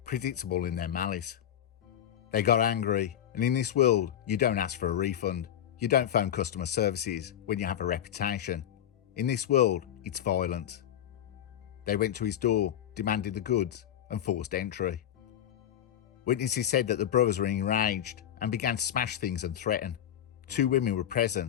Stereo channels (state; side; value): quieter; right; 10.6 dB